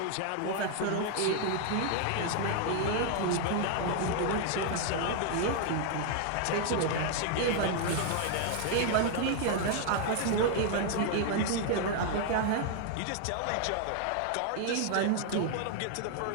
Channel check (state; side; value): different; both; correlation 0.00